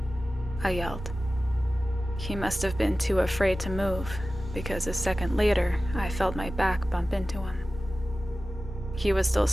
I yelled. He must have been too afraid to move, because a second later, I felt my back bump into him. He was still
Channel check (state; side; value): normal; both; correlation 0.96